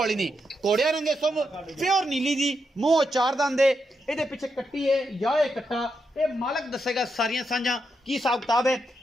नहीं घोड़िया रंगे सुम प्योर नीली जी मूँह चार दंद है ये पिछे कट्टी है या ये कट्टा ये मालक दसेगा सारिया सांझा की हिसाब किताब है।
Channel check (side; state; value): both; normal; correlation 0.83